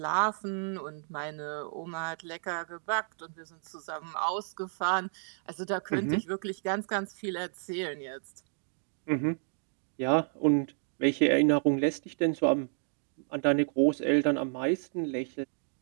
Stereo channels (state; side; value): silent; left; digital silence